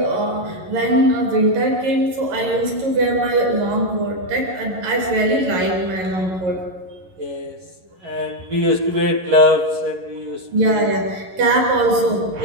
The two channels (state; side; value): late; left; 11 ms